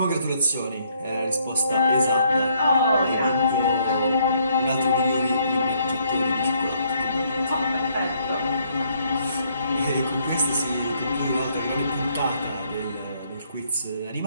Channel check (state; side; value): inverted; both; correlation -0.68